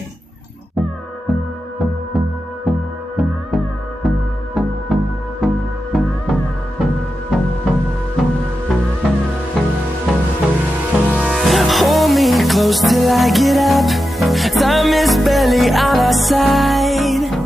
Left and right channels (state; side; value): normal; both; correlation 0.90